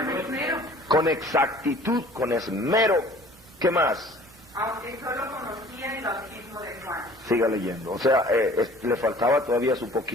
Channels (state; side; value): normal; both; correlation 0.50